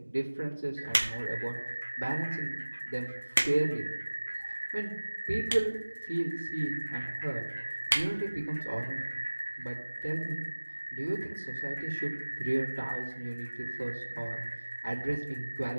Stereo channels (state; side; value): inverted; both; correlation -1.00